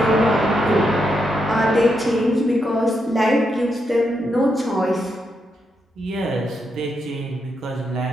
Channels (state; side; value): normal; both; correlation 0.82